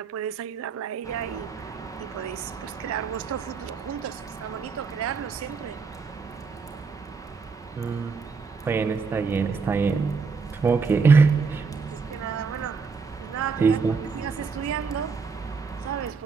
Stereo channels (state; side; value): quieter; left; 5.1 dB